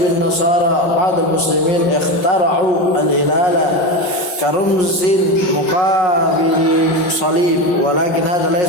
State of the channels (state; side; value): late; right; 5.5 ms